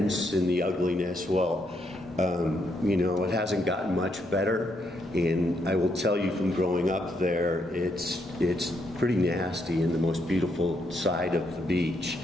and the ugliness. Well, you know, it hasn't gotten much better. And I will tell you from growing up there, it's pretty nasty in the most beautiful side of the beach,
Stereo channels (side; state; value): both; normal; correlation 0.77